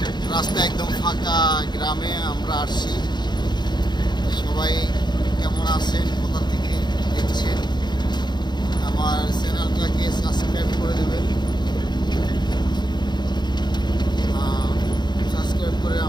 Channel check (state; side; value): late; right; 0.21 ms